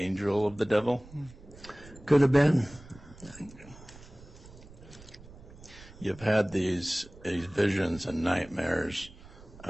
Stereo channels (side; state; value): right; noise; rumble, 20 dB below the sound